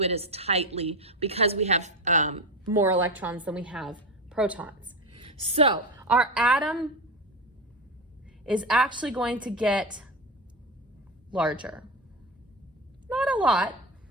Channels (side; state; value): both; normal; correlation 0.18